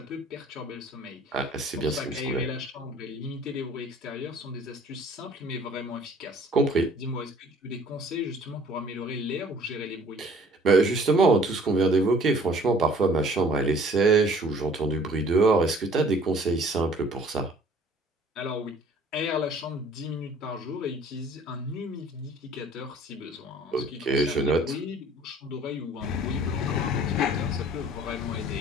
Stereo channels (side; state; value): both; normal; correlation 0.53